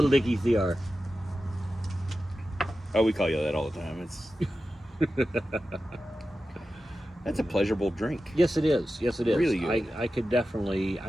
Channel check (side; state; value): both; normal; correlation 0.93